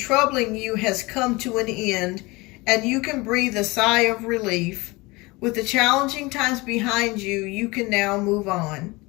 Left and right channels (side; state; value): right; quieter; 23.5 dB